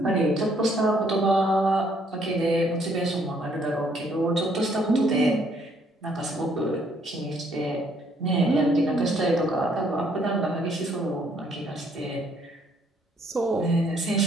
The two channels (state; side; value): normal; both; correlation 0.67